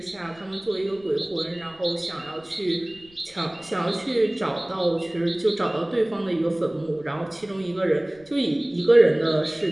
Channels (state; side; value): noise; left; rumble, 27 dB below the sound